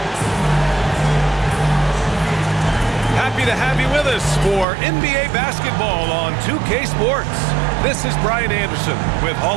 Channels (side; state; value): left; drops out; at 4.7 s